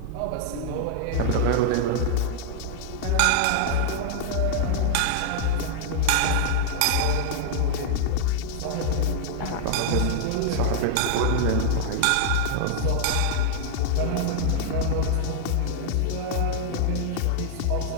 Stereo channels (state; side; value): different; both; correlation -0.01